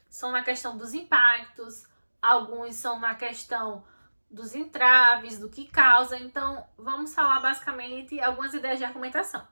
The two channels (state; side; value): inverted; both; correlation -1.00